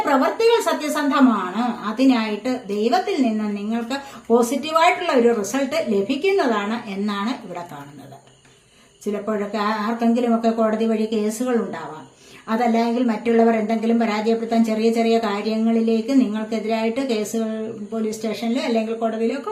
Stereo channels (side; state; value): both; identical; correlation 1.00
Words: പ്രവൃത്തികൾ സത്യസന്ധമാണ്, അതിനായിട്ട് ദൈവത്തിൽ നിന്ന് നിങ്ങൾക്ക് പോസിറ്റീവായിട്ടുള്ള ഒരു റിസൾട്ട് ലഭിക്കുന്നതാണ് എന്നാണ് ഇവിടെ കാണുന്നത്. ചിലപ്പോഴൊക്കെ ആർക്കെങ്കിലുമൊക്കെ കോടതി വഴി കേസുകൾ ഉണ്ടാവാം. അതല്ലെങ്കിൽ മറ്റുള്ളവർ എന്തെങ്കിലും പരാജയപ്പെടുത്താൻ ചെറിയ ചെറിയ കാര്യങ്ങളിലേക്ക് നിങ്ങൾക്കെതിരായിട്ട് കേസുകൾ പോലീസ് സ്റ്റേഷനിൽ അല്ലെങ്കിൽ കോടതിയിലൊക്കെ